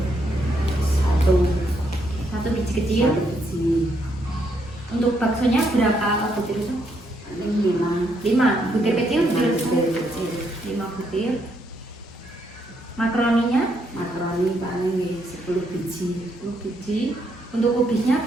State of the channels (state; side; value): normal; both; correlation 0.75